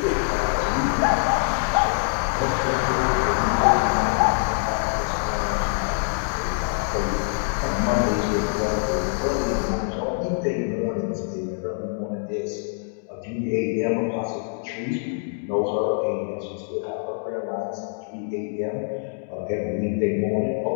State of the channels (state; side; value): silent; right; digital silence